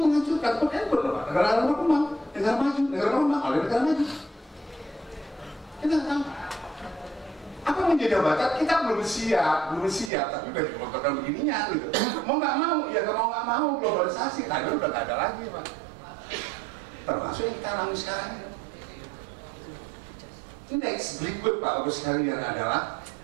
Bukan bener Pak, negara berkembang, negara maju, oleh negara maju. Kita nggak tahu. Apa menjadi jabatan kita belum siap, tapi udah dikontrol begininya gitu. Mau nggak mau globalisasi, tadi udah nggak ada lagi Pak. Termasuk yang kita alami sekarang ini. Next berikut Pak Ibu sekalian adalah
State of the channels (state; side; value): drops out; left; at 10.1 s